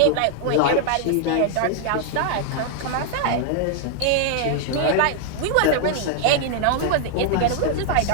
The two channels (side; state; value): both; different; correlation 0.00